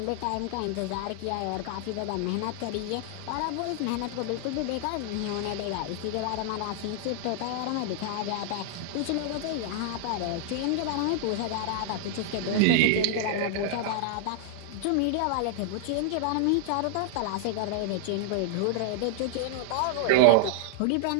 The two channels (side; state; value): both; different; correlation -0.01